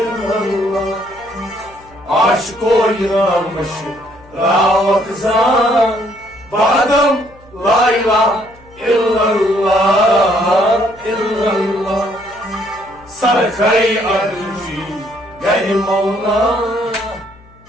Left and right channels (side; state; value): left; noise; hum, 26 dB below the sound